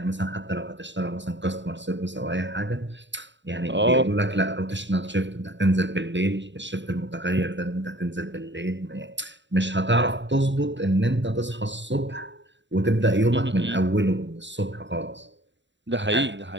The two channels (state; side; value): late; left; 0.53 ms